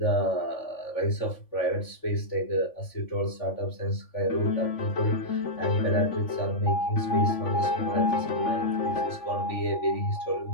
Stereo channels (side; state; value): right; late; 3.5 ms